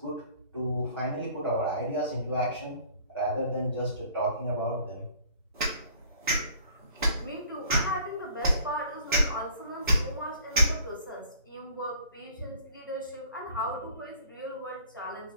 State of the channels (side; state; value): both; inverted; correlation -0.53